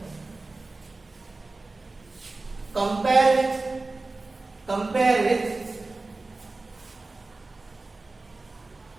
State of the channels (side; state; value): left; quieter; 3.3 dB